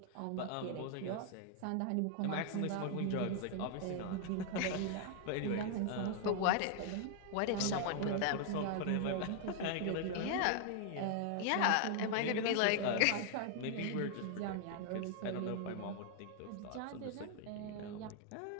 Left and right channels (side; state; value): both; different; correlation 0.00